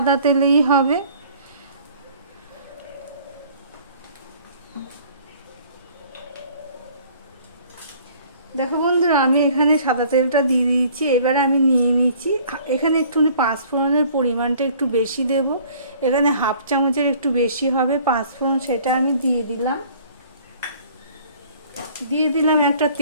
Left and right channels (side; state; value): both; inverted; correlation -0.54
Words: তেলেই হবে। দেখো বন্ধুরা, আমি এখানে সাদা তেলটা দিয়ে দিয়েছি। এবার আমি নিয়ে নিচ্ছি, এখানে একটু পাঁচফোড়নের পরিমাণটা একটু বেশি দেব। এখানে হাফ চামচের একটু বেশি হবে পাঁচফোড়ন, সেটা আমি দিয়ে দিলাম। একটা